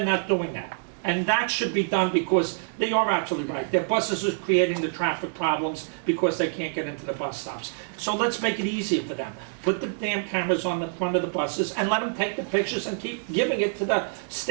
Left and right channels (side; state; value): left; silent; digital silence